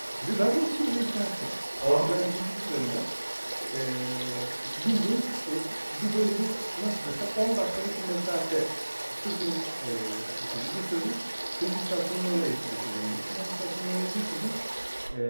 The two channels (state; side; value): inverted; both; correlation -1.00